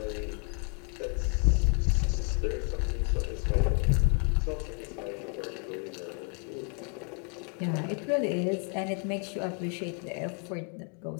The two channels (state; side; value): quieter; right; 39.6 dB